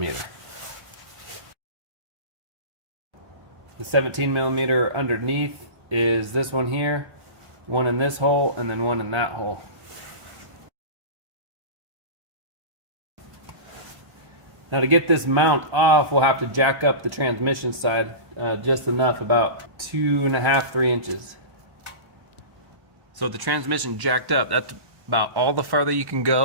The 17 millimeter underneath is this one here, one in this hole, and then one in that hole. Now to get this mount off, we'll have to jack up the transmission side just enough, about 2.5 to 3 inches. So the transmission jacked up, that's about all the farther you can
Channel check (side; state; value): left; late; 1.3 ms